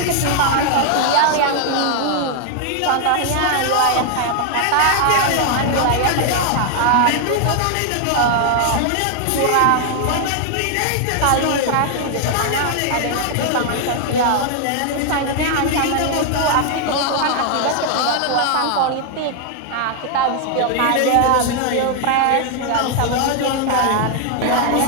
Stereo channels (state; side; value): different; both; correlation 0.00